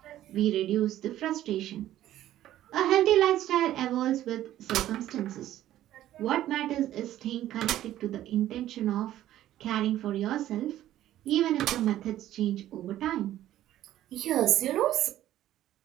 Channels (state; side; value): quieter; left; 13.2 dB